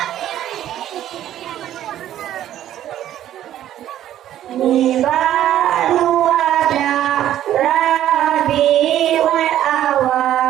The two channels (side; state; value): left; quieter; 12.0 dB